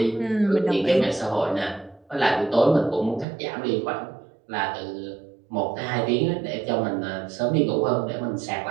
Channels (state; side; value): drops out; left; at 3.2 s